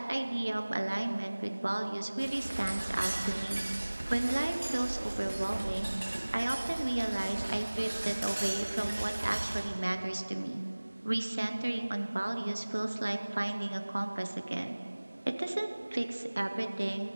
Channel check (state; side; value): inverted; both; correlation -1.00